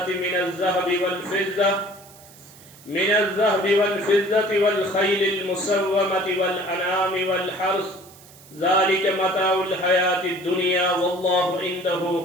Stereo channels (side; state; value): right; noise; hiss, 23 dB below the sound